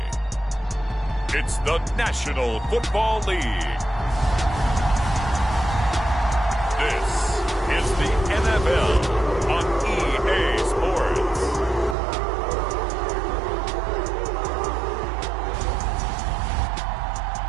it's the National Football League. This is the NFL on EA Sports.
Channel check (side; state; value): left; drops out; at 12.0 s